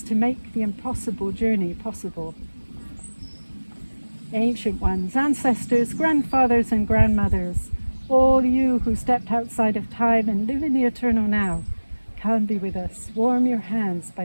to make the impossible journey possible. Ancient ones, ancestors, grandfathers and grandmothers, all you who stepped outside of time and live in the eternal now, come be with us. Warm your hands by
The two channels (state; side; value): inverted; both; correlation -1.00